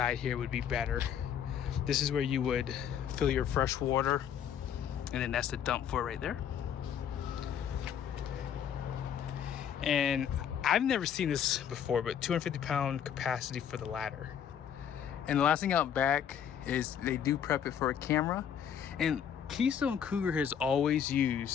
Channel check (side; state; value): right; quieter; 8.7 dB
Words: here would be better. This is where you would fill your fresh water, and then that's the dump for it right there. And I've never seen this before, but 250-pound capacity for the ladder. And the last thing out back is they do prep it for a camera. And Keystone Cougar has always